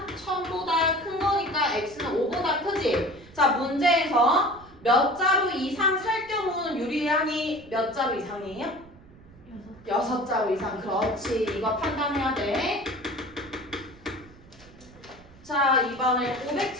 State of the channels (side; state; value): right; noise; rumble, 23 dB below the sound